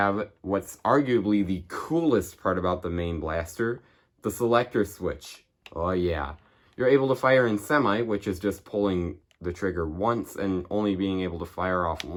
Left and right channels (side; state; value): both; identical; correlation 1.00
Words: what's arguably the coolest part about the main blaster, the selector switch. Oh yeah. You're able to fire in semi, which is just pulling the trigger once and only being able to fire off